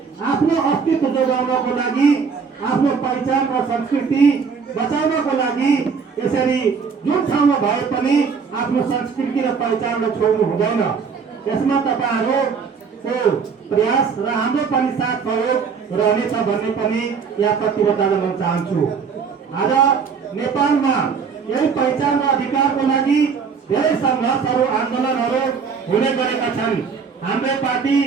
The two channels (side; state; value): left; quieter; 5.9 dB